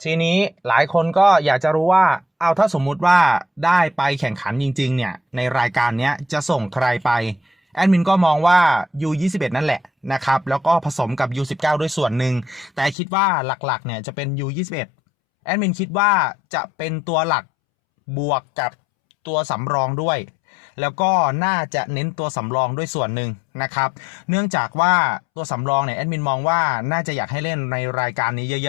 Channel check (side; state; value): right; drops out; at 13.0 s